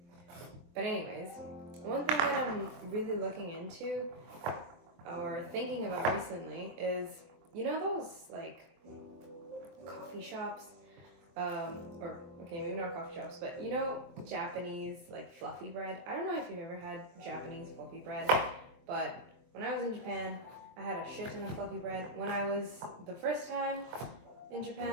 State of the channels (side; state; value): left; late; 23 ms